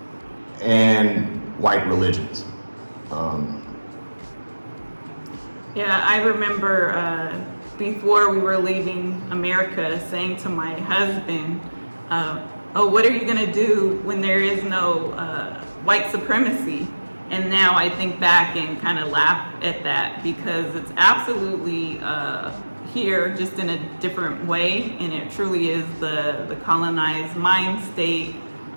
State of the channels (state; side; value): inverted; both; correlation -1.00